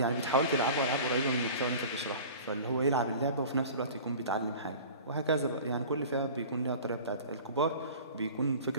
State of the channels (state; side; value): inverted; both; correlation -0.40